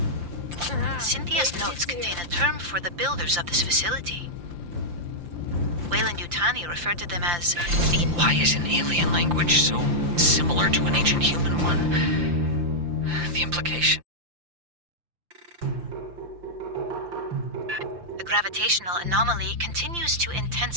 Cynthia's notes contain a term for the builders of this facility. Weyland-Yutani referred to them as the... Why is an alien language so similar to an ancient human one? The implication. The gravitational anomaly continues to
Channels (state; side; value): late; left; 5.8 ms